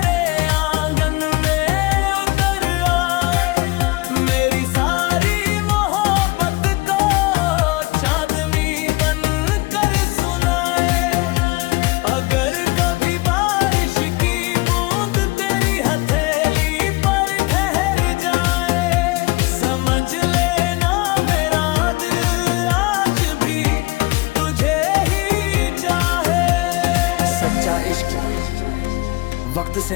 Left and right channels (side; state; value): right; quieter; 22.7 dB